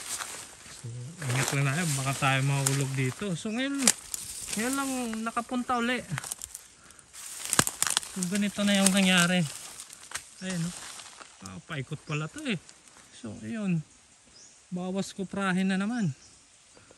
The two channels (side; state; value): both; identical; correlation 1.00